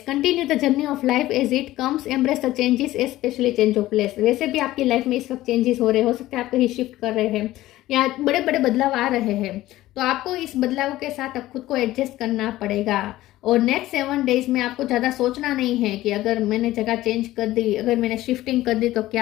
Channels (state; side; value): quieter; right; 16.0 dB